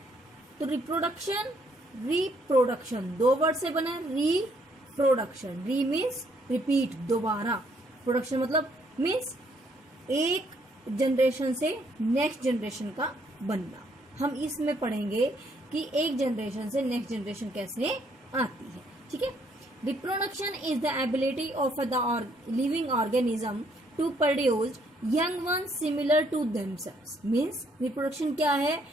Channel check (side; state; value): both; normal; correlation 0.68